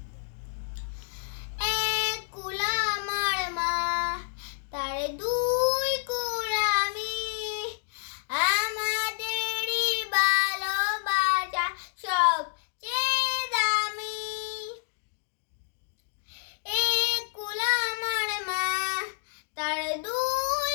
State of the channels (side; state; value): right; silent; digital silence